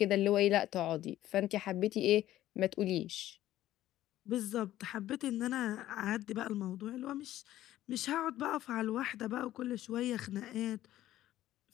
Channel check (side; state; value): right; quieter; 13.8 dB